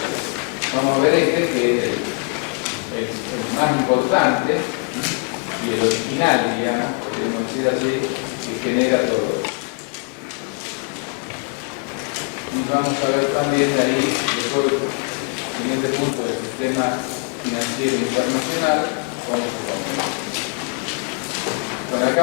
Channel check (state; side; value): quieter; right; 36.5 dB